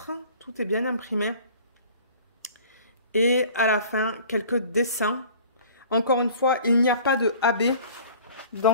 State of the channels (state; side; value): inverted; both; correlation -0.48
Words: Tout est bien imprimé. Et à la fin, quelques dessins. Encore une fois, il n'y a pas de AB